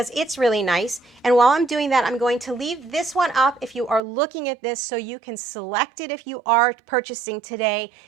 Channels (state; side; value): drops out; left; at 4.0 s